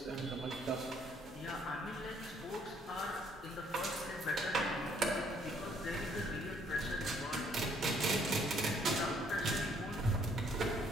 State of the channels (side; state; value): both; normal; correlation 0.65